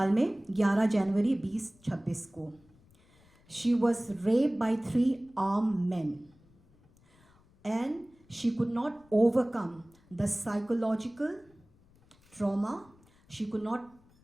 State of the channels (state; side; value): noise; left; rumble, 30 dB below the sound